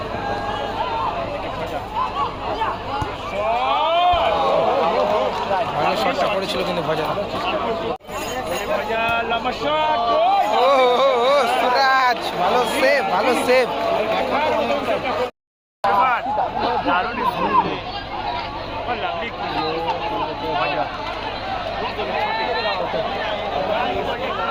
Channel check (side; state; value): both; identical; correlation 1.00